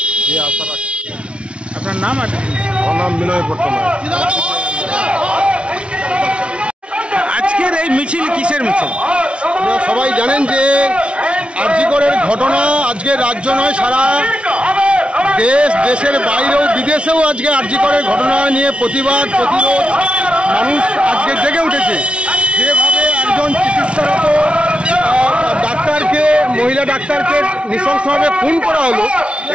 এই আশা রাখছি। আপনার নাম আছে? আমার নাম বিনয় পট্টনায়ক। আজকের এই মিছিল কিসের মিছিল? আপনারা সবাই জানেন যে আরজিকরের ঘটনা আজকে রাজ্য নয়, সারা দেশের বাইরেও বিদেশেও আজকে আরজিকরের ঘটনা নিয়ে প্রতিবাদ প্রতিরোধ মানুষ আজকে জেগে উঠেছে। যেভাবে একজন চিকিৎসারত ডাক্তারকে, মহিলা ডাক্তারকে নৃশংসভাবে খুন করা হলো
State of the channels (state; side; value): late; left; 0.059 ms